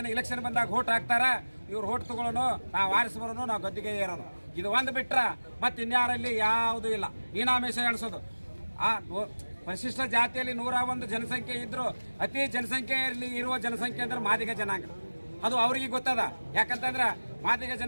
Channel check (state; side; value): inverted; both; correlation -1.00